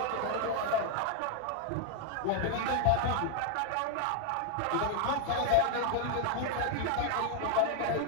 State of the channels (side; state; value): both; different; correlation 0.00